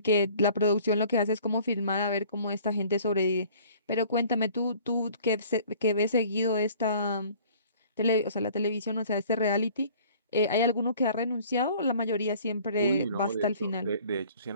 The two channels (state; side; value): inverted; both; correlation -0.52